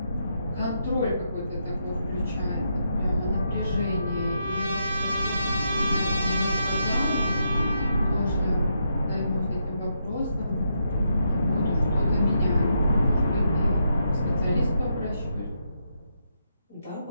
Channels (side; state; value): both; inverted; correlation -0.80